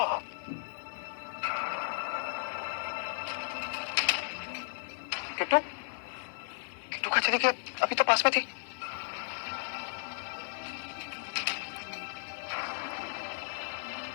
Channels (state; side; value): silent; right; 55 dB below the other